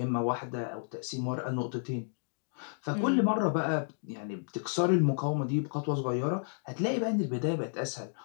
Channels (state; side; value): silent; right; digital silence